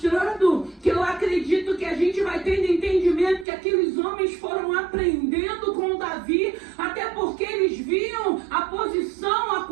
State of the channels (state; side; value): drops out; left; at 3.5 s